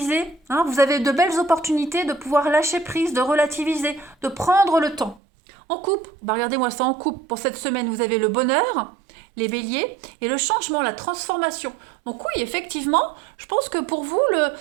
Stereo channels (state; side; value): drops out; left; at 5.2 s